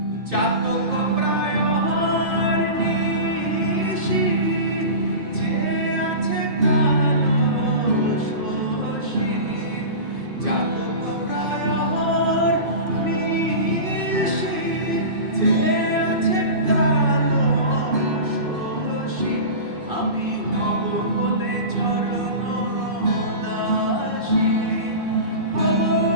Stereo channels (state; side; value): late; left; 2.5 ms